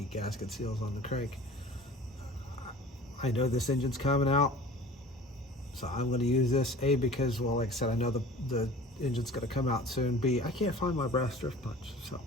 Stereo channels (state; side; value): normal; both; correlation 0.43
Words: gasket seals on the crank. I know this engine's coming out, so I'm going to use this, A, because, well, like I said, I know the engine's going to come out soon. B, I can't find my brass drift punch, so